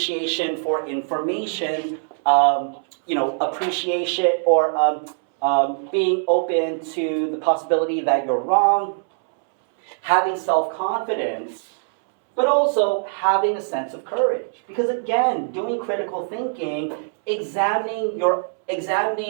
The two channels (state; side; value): silent; left; 64 dB below the other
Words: for information, appreciation or being open to the possibility that you're wrong, having self-confidence, but also having a sense of courage. Because again, doing critical thinking, examining your